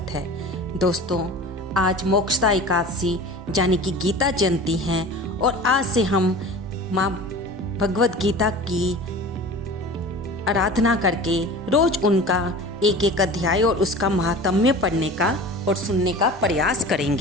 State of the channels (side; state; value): both; normal; correlation 0.37